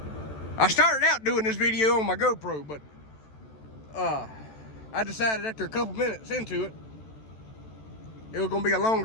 I started out doing this video on my GoPro, but I decided after a couple minutes into it, it was gonna be a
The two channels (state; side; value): late; right; 14 ms